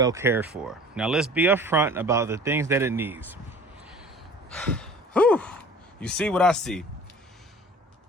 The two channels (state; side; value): normal; both; correlation 0.45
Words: cared for. Now let's be upfront about the things that it needs. Whew. You see what I see?